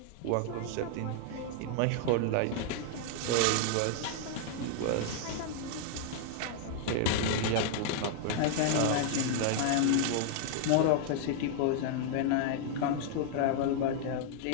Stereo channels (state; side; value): different; both; correlation -0.01